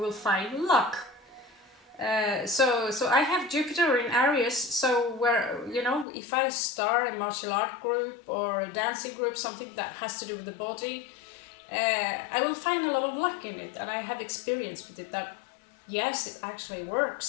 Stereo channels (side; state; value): right; drops out; at 6.1 s